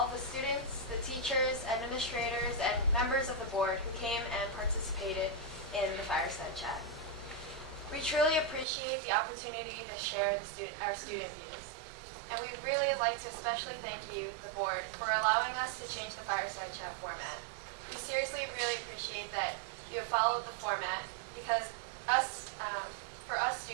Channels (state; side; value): drops out; left; at 8.7 s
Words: the students, the teachers, administrators, and members of the board who came and participated in the Fireside Chat. We truly appreciate the opportunity to share our student views. And we'd really like to especially thank you, the board, for allowing us to change the Fireside Chat format. We seriously really appreciate that you have followed the format because for us